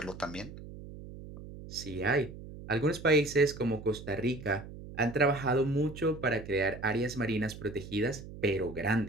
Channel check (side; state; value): right; noise; hum, 13 dB below the sound